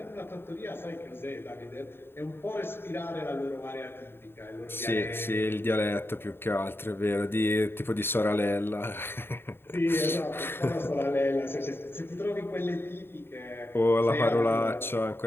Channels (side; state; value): right; late; 0.11 ms